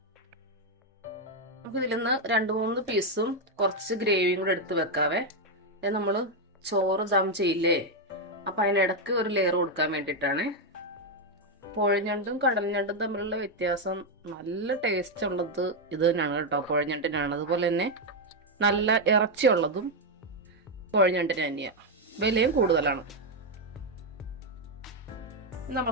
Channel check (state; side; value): normal; both; correlation 0.03